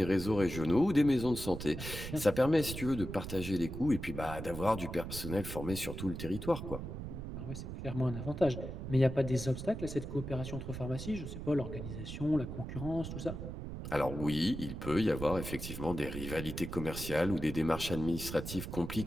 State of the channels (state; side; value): noise; right; rumble, 7 dB below the sound